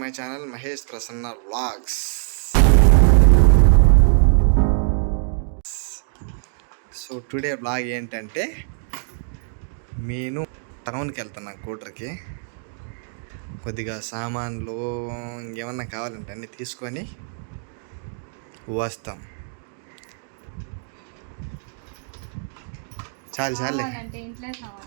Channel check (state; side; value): silent; left; digital silence